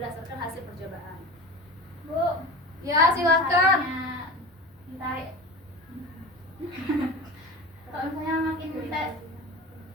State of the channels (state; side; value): normal; both; correlation 0.32